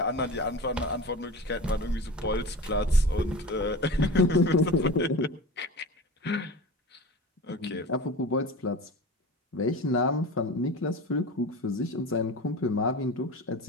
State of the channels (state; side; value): normal; both; correlation 0.33